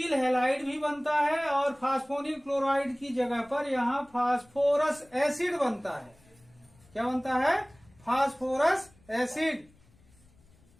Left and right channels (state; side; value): noise; left; rumble, 29 dB below the sound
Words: हैलाइड भी बनता है और फास्फोनिल क्लोराइड की जगह पर यहां फास्फोरस एसिड बनता है। क्या बनता है, फास्फोरस एसिड।